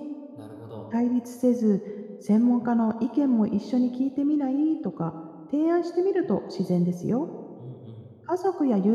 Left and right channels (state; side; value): identical; both; correlation 1.00